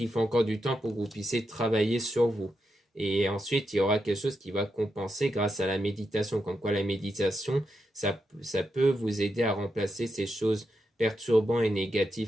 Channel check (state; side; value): normal; both; correlation 0.85